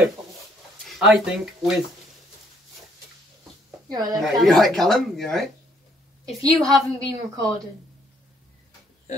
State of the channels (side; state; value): both; normal; correlation 0.67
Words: I think with You're right there, Right, Callum. you right, Callum? You right? If you haven't been recording,